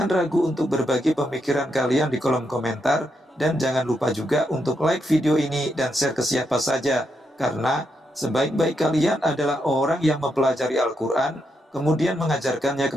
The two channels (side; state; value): both; normal; correlation 0.81